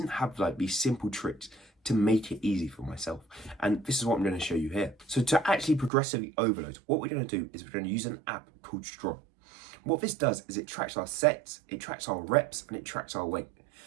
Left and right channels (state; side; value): drops out; left; at 5.9 s